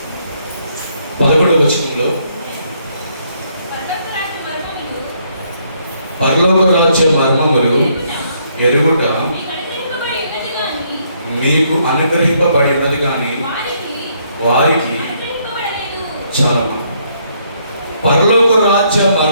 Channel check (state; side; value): inverted; both; correlation -0.71